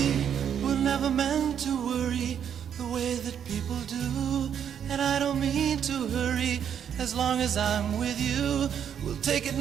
we're never meant to worry the way that people do. And I don't mean to hurry, as long as I'm with you. We'll take it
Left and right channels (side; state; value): left; quieter; 8.6 dB